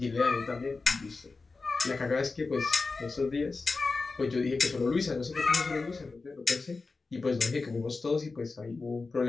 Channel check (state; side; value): quieter; right; 4.0 dB